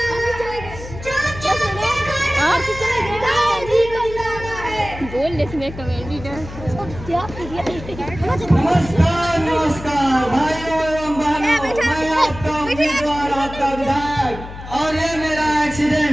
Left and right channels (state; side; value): noise; left; hum, 12 dB below the sound